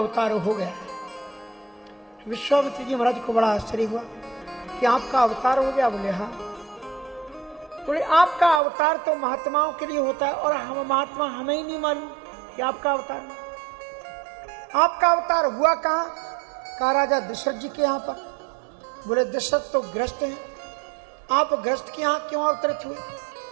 हो गया है। विश्वामित्र जी महाराज को बड़ा आश्चर्य हुआ कि आपका अवतार हो गया। बोले हाँ। बोले आपका अवतार तो महात्माओं के लिए होता है और हम महात्मा हमें ही नहीं मालूम कि आपका अवतार है। आपका अवतार हुआ कहाँ? कहा राजा दशरथ जी के यहाँ पर। बोले दशरथ तो ग्रस्त हैं, आप ग्रस्त के यहाँ क्यों अवतरित हुए?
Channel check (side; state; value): left; drops out; at 8.6 s